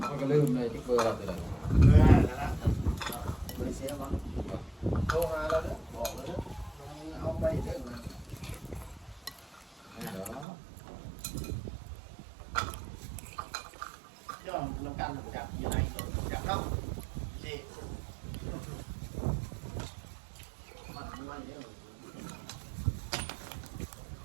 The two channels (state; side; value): drops out; left; at 10.5 s